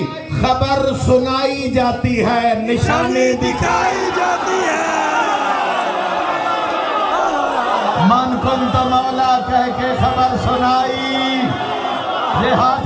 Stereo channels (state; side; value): identical; both; correlation 1.00